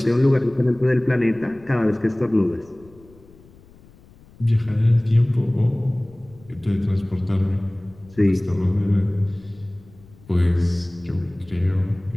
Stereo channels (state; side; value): noise; left; rumble, 25 dB below the sound